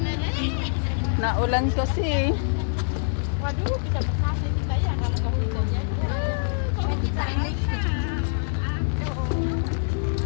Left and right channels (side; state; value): right; silent; 60 dB below the other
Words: Naulan kasi. Waduh, bisa berhasil kita ya kalau nggak hujan ya. Kalau kita ini.